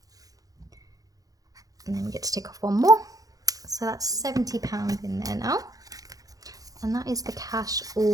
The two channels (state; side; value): late; left; 0.17 ms